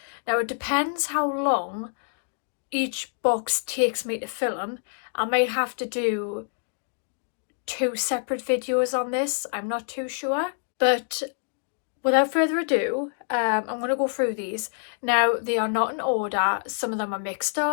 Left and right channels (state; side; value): silent; right; digital silence